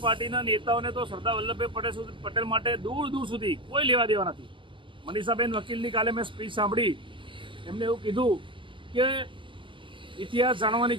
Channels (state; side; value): late; left; 0.25 ms